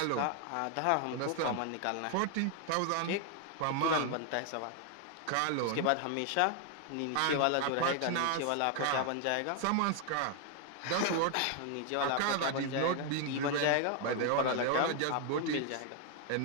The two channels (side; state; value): both; different; correlation 0.00